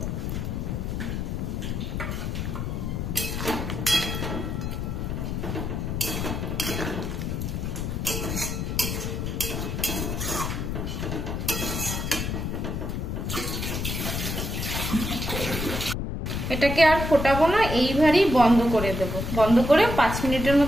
এটাকে আর ফোটাবো না, এইভাবেই বন্ধ করে দেব। বন্ধ করে 5 মিনিটের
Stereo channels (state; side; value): noise; left; rumble, 2 dB below the sound